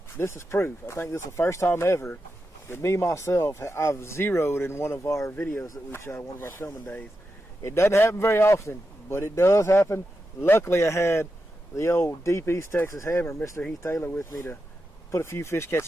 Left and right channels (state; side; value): normal; both; correlation 0.88